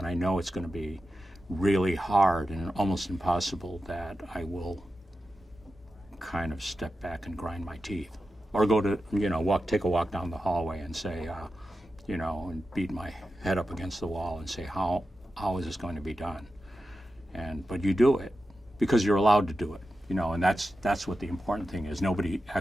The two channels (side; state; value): both; normal; correlation 0.91